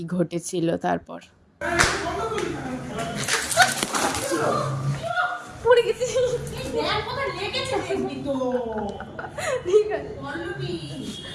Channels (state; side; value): identical; both; correlation 1.00